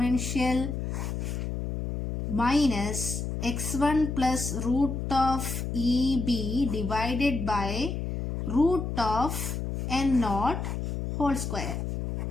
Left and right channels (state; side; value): noise; left; hum, 3 dB below the sound